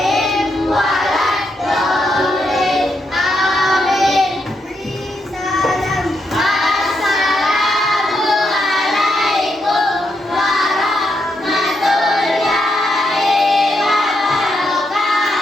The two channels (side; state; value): both; normal; correlation 0.80